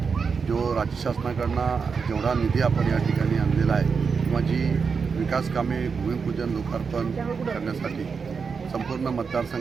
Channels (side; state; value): left; quieter; 5.5 dB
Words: जो राज्य शासनाकडून जेवढा निधी आपण या ठिकाणी आणलेला आहे किंवा जी विकास कामे भूमिपूजन लोकार्पण करण्यासाठी संपूर्ण